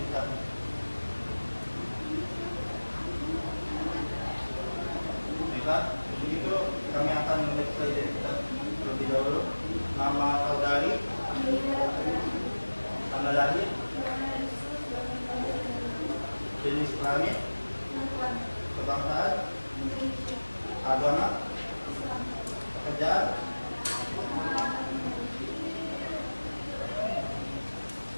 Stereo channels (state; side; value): inverted; both; correlation -1.00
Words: Baiklah, untuk itu kami akan memeriksa identitas terlebih dahulu. Nama saudari, tanggal lahir, jenis kelamin, kebangsaan, agama, pekerjaan.